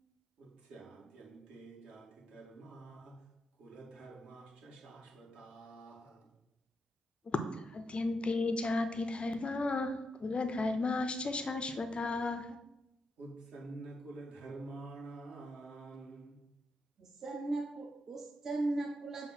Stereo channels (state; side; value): normal; both; correlation 0.84